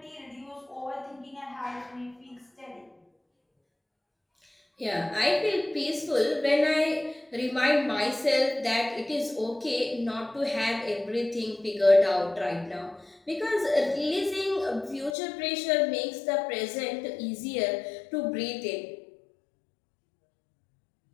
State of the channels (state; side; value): drops out; right; at 15.2 s